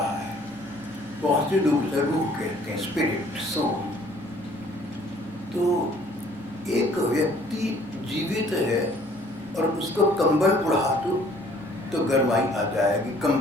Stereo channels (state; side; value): normal; both; correlation 0.58